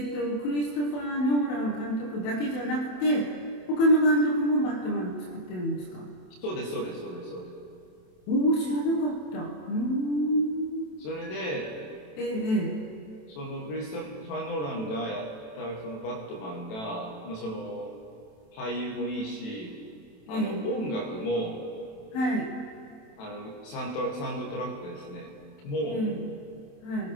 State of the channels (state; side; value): late; right; 27 ms